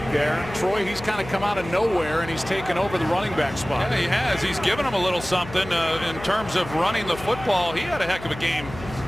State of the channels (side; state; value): left; noise; hum, 13 dB below the sound